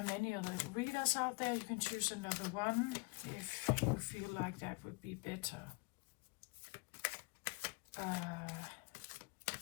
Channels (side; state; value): right; quieter; 29.9 dB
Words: many other readers out there. You can choose another one if you feel like that would be better.